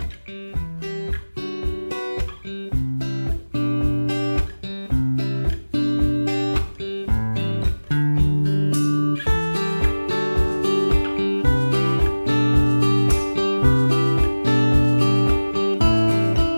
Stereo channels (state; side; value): inverted; both; correlation -1.00